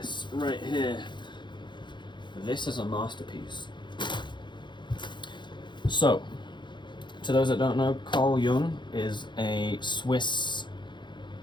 right here, this is a masterpiece. So, to those that don't know, Carl Jung is a Swiss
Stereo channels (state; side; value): late; right; 0.22 ms